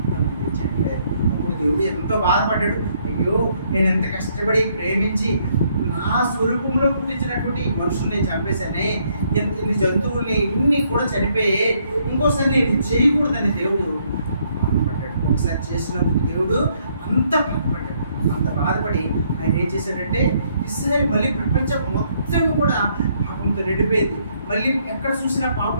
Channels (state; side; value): inverted; both; correlation -0.70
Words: అప్పుడు దేవుడు ఎంతో బాధపడ్డాడు. అయ్యో, నేను ఎంత కష్టపడి ప్రేమించి నా స్వరూపంలో పుట్టించినటువంటి ఈ మనుషుల్ని చంపేశానే, ఇన్ని జంతువుల్ని ఇన్ని కూడా చనిపోయే, ఇంకోసారి నేను చేయకూడదని దేవుడు బాధపడ్డాడు. ఒకసారి చేసినందుకు దేవుడు అంత బాధపడ్డాడు. అంత బాధపడి ఆయన ఏం చేశాడంటే ఇస్రాయేల్ మళ్ళీ ప్రపంచం మొత్తం కూడా పాపంతో నిండిపోయింది. మళ్ళీ ఎక్కడ చూసినా